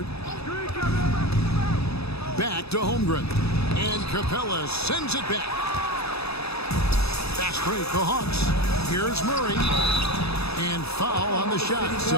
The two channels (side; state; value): right; late; 0.78 ms